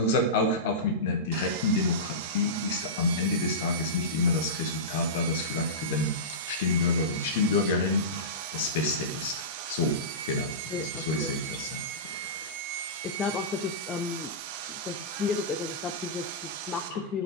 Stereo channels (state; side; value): normal; both; correlation -0.18